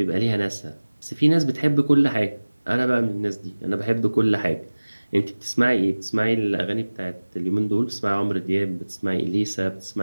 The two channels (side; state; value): both; inverted; correlation -1.00